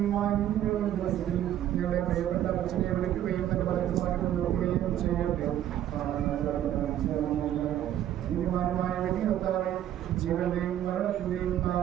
ഞങ്ങളുടെ പ്രിയപ്പെട്ട അച്ഛനെ വിളിക്കുകയും തന്റെ പലതുമായിട്ട് നോക്കുകയും ചെയ്യട്ടെ. നീതിമാനുമായ വ്യക്തി കർത്താവേ, ജീവന്റെയും മരണത്തിന്റെയും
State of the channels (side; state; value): left; quieter; 11.6 dB